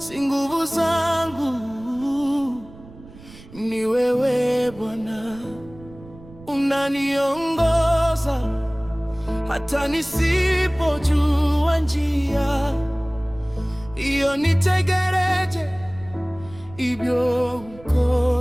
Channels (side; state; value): right; noise; rumble, 20 dB below the sound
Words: nguvu zangu, ni wewe Bwana, unaniongoza hata nisipojua njia. Iyo nitegereje ibyo